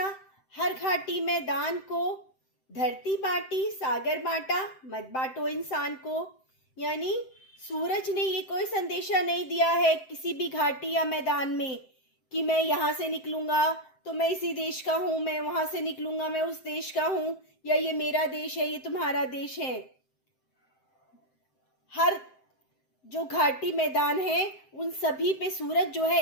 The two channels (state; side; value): late; right; 7.7 ms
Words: हर घाटी मैदान को, धरती बांटी, सागर बांटा, मत बांटो इंसान को। यानी सूरज ने ये कोई संदेशा नहीं दिया है किसी भी घाटी या मैदान में कि मैं यहाँ से निकलूंगा तो मैं इसी देश का हूँ, मैं वहां से निकलूंगा मैं उस देश का हूँ, या ये मेरा देश है, ये तुम्हारा देश है। हर जो घाटी मैदान है उन सभी पे सूरज जो है